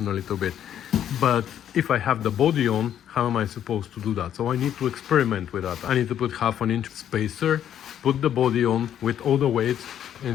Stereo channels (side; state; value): right; quieter; 10.1 dB